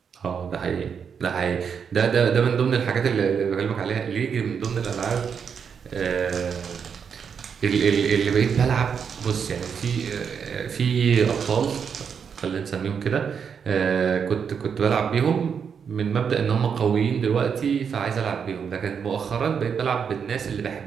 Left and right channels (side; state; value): left; quieter; 6.8 dB